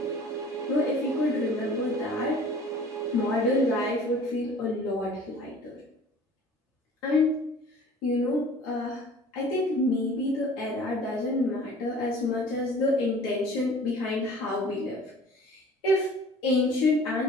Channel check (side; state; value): both; normal; correlation 0.47